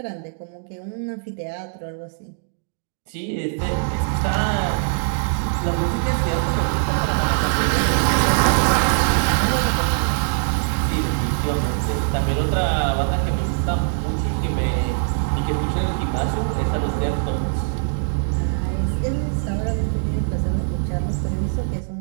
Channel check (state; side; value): silent; left; digital silence